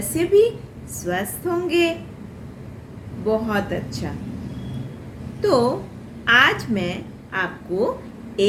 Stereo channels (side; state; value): both; identical; correlation 1.00